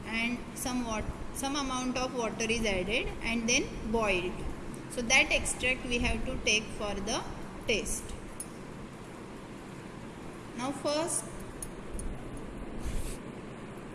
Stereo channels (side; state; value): both; identical; correlation 1.00